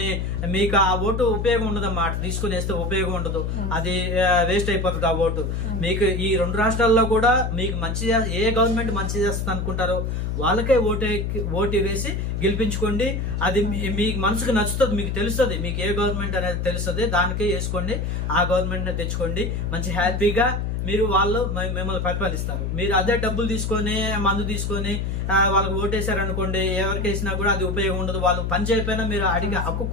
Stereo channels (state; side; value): noise; left; hum, 1 dB below the sound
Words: మీకు ఆ ఓటు ఉపయోగం ఉండదమ్మా. తీసుకుని వేస్తే ఉపయోగం ఉండదు, అది వేస్ట్ అయిపోతుంది ఆ ఓటు. మీకు ఈ 2 రాష్ట్రాల్లో కూడా మీకు ఏ గవర్నమెంట్ మంచి చేస్తుంది అనుకుంటారో వాళ్ళకే ఓటు వేసి గెలిపించుకోండి. అది మీకు మనసుకు నచ్చుతుంది, మీకు తెలుస్తుంది, మీకు ఏ గవర్నమెంట్ అనేది తెలుస్తుంది, దానికే వేసుకోండి. ఆ గవర్నమెంట్ తెచ్చుకోండి. మంచి హ్యాపీగా వాళ్ళు మిమ్మల్ని పరిపాలిస్తారు. మీరు అదే డబ్బులు తీసుకొని, మందు తీసుకొని వాళ్ళకి ఓటేశారనుకోండి, ఎవరికి వేసినా కూడా అది ఉపయోగం ఉండదు. వాళ్ళు పని చేయకపోయినా మీరు అడిగే హక్కు